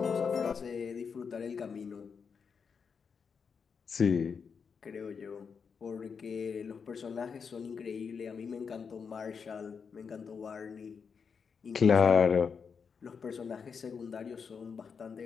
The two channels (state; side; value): quieter; right; 6.0 dB